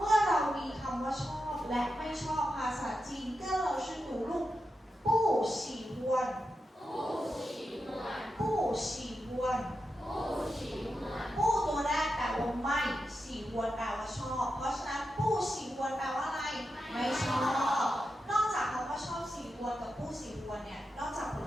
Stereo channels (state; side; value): normal; both; correlation 0.89